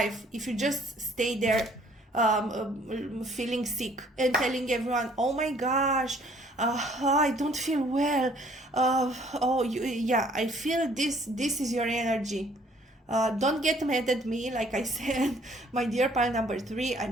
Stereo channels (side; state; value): both; normal; correlation 0.60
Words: if you just stay there feeling sick and telling everyone, oh my gosh, I don't feel well. I feel this is your energy. Don't get mad at me. Like I said, my dear pile number 3,